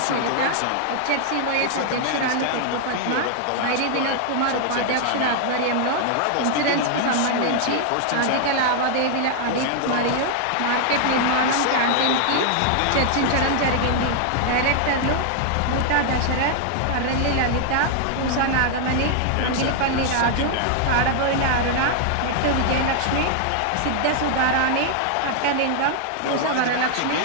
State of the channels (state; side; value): different; both; correlation 0.00